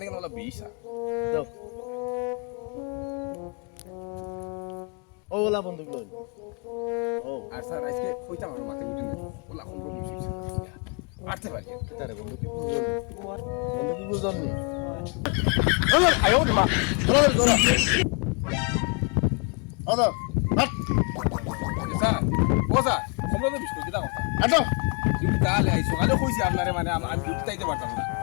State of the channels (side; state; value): right; quieter; 36.1 dB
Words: কেন বলা 20 দাও ওলা বন্ধু লই ও আর স্যার আজকে কইতাম আমার মাথায় উঠে না বলা কোন রকম হইছে আটতে পারি তারে বন্ধু কি বুঝল বন্ধু কি বুঝল নি আয়ো মা ওলা ওলা আদা হাট স্যার ও স্যার তোমরা তো বিস্কুট দিতা কথা আটো ডিউটি তাহলে আই সকালে কইছি আপনারে মানে আমি ডিউটি তাইতে পারতাম না